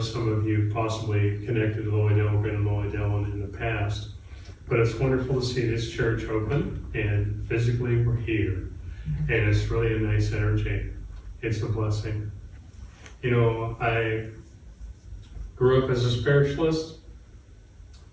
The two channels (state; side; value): identical; both; correlation 1.00